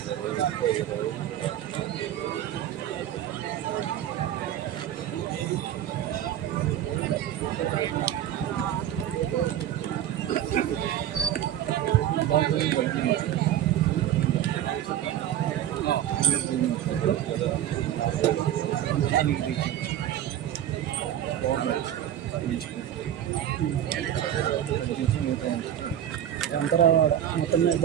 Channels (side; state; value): left; quieter; 11.1 dB